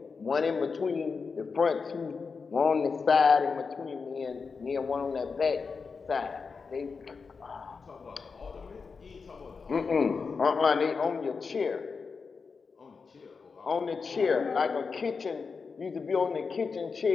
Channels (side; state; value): right; quieter; 5.0 dB